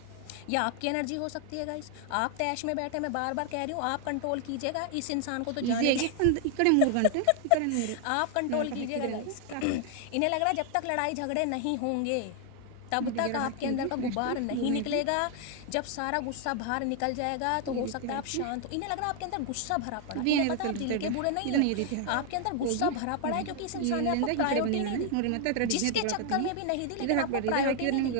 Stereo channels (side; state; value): both; different; correlation 0.00